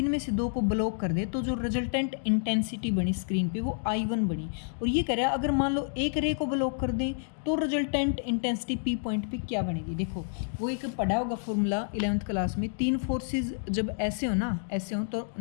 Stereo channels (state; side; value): silent; right; digital silence